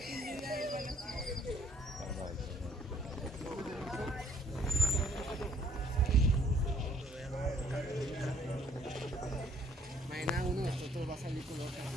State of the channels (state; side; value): normal; both; correlation 0.62